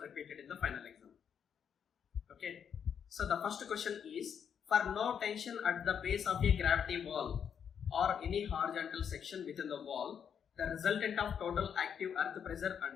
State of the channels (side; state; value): right; quieter; 7.8 dB